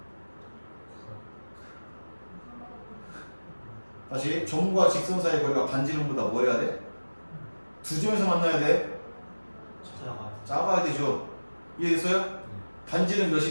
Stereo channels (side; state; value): both; inverted; correlation -1.00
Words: 다시 점과 직선 사이의 거리가 반지름보다 뭐 해야 돼? 두 점에서 만나야 돼? 작아야 되죠. 이해됐어요? 반지름